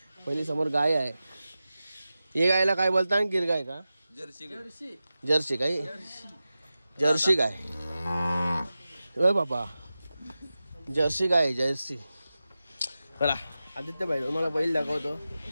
पहिली समोर गाय आहे हे गायला काय बोलता गिर गाय का जर्सी काय जर्सी गाय ओय बाबा जर्सी गाय जर्सी बघा आदित्य भाई तुम्हाला बैल दाखवतो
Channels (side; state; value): both; inverted; correlation -0.94